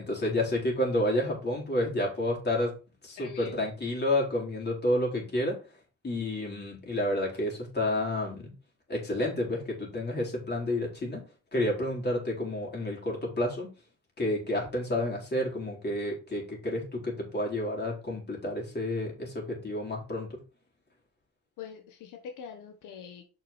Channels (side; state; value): both; normal; correlation 0.41